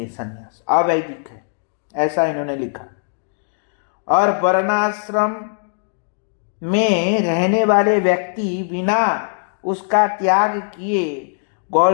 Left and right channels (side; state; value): right; silent; digital silence